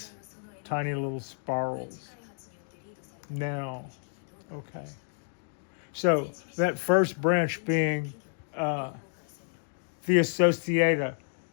tiny little spirals. Now, okay. So that first branch being the Associata,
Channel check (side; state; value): right; silent; digital silence